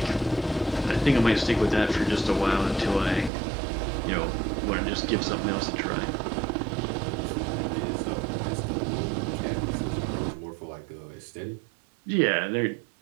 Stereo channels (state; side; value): drops out; left; at 3.3 s